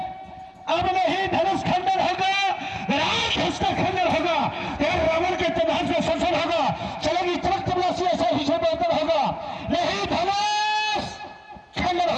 अब नहीं धनुष खंडन होगा, राम उसका खंडन होगा, और रावण के प्रभाव से संसद होगा, चलेगी चमक तबलासी, ऐसा हिस्सा बेहतर होगा, नहीं धनुष खंडन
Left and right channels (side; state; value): both; identical; correlation 1.00